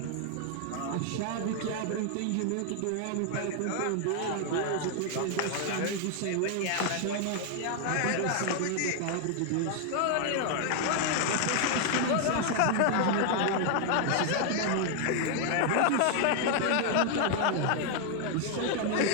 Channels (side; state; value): both; different; correlation 0.00